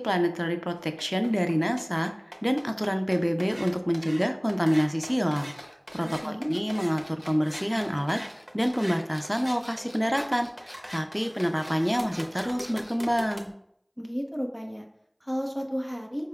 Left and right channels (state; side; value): identical; both; correlation 1.00